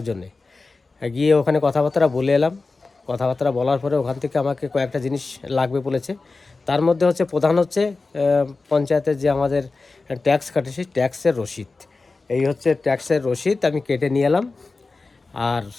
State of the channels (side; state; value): right; quieter; 3.8 dB